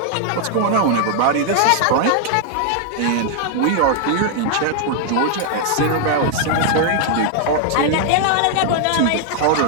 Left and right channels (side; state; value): both; different; correlation 0.00